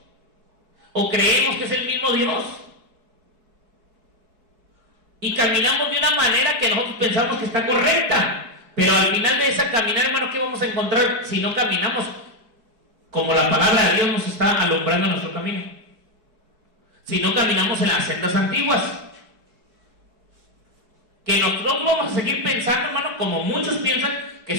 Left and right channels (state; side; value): late; left; 4.7 ms